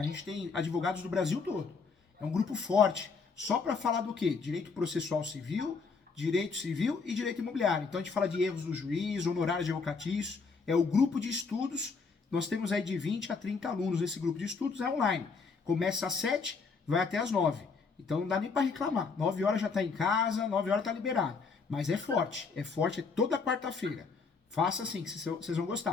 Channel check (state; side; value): quieter; right; 4.9 dB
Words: gente tem advogados do Brasil todo. É um grupo forte, só para falar do quê? Direito processual civil, direito civil e direito imobiliário. Então a gente fala de erros do juiz, honorários advocatícios, é o grupo de estudos. Nós temos aí de 20 a 30 alunos nesse grupo de estudos, é online. Começa às 7, vai até às 9. Então não dá nem para reclamar. 9 horas já está em casa, 9 horas está liberado. Mas é forte toda quarta-feira. Faça assim, que vocês vão